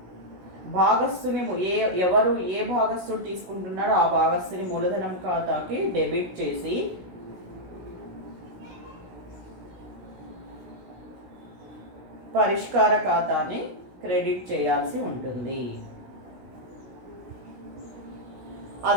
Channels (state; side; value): late; left; 16 ms